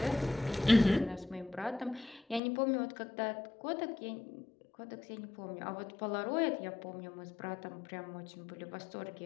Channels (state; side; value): drops out; right; at 2.4 s